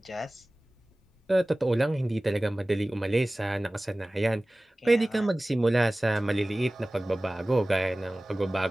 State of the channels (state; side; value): normal; both; correlation 0.98